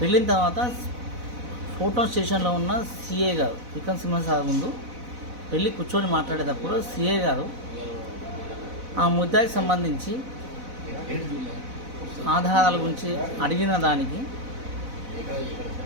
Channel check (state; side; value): late; left; 4.0 ms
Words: వెళ్ళిన తర్వాత ఫోటోన్ స్టేషన్లో ఉన్న సిఐ గారు విక్రమ్ సింహ సార్ ముందు వెళ్ళి కూర్చొని మాట్లాడేటప్పుడు సిఐ గారు ఆ ముద్దాయికి సంబంధించి ఆధారాల గురించి అడిగిన దానికి